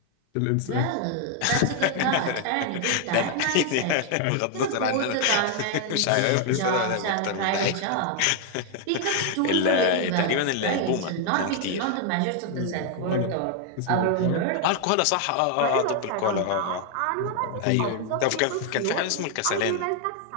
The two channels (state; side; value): different; both; correlation 0.00